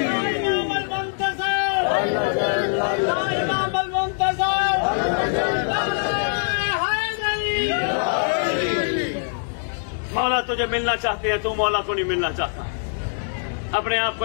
مولا تجھے ملنا چاہتے ہیں، تو مولا کو نہیں ملنا چاہتا۔ اپنے آپ کو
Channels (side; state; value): right; silent; digital silence